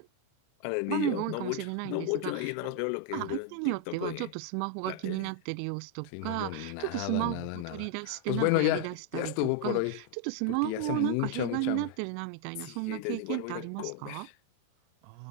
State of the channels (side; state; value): both; different; correlation 0.01